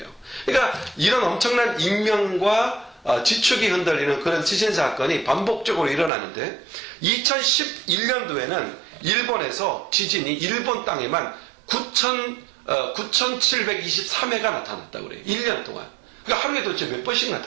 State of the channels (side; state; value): left; drops out; at 6.1 s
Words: 그러니까 이런 엄청난 인명과 지축이 흔들리는 그런 지진 사건이 반복적으로 일어나는데 2011년도에는 일본에서 지진이 일본 땅에만 9,723회가 나타났다고 그래요. 1년 동안. 그러니까 하루에 도대체 몇 번씩